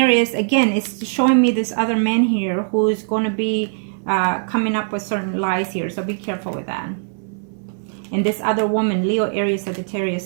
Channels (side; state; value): left; silent; 60 dB below the other